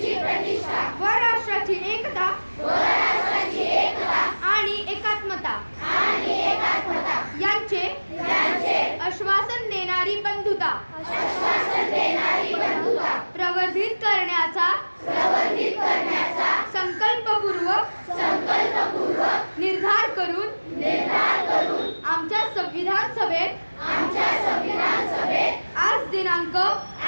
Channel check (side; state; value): both; inverted; correlation -1.00